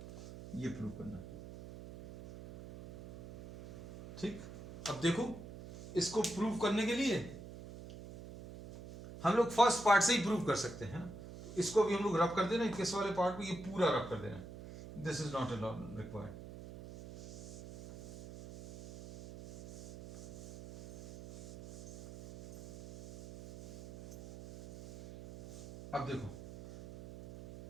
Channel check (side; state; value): right; noise; hum, 13 dB below the sound